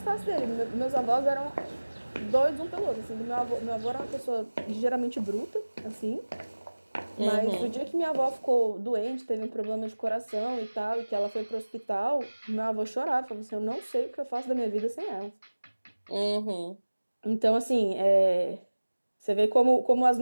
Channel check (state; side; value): inverted; both; correlation -1.00